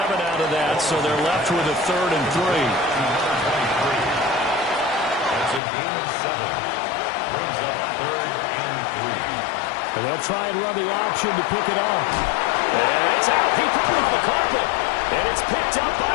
out of that, so they're left with a 3rd and 3. That's a gain of 7. Brings up 3rd and 3. And they'll try and run the option to pick it up. And it's out. He put it on the carpet. And it's picked up by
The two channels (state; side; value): drops out; right; at 5.6 s